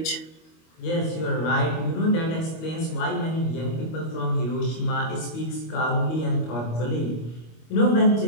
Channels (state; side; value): late; right; 25 ms